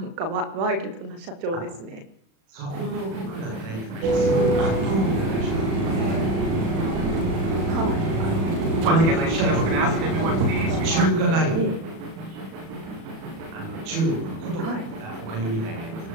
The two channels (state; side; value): late; left; 36 ms